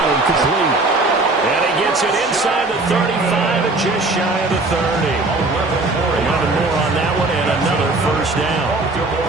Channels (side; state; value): left; quieter; 3.1 dB